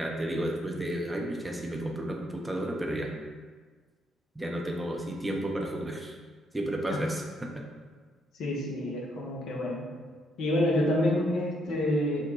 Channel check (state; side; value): normal; both; correlation 0.74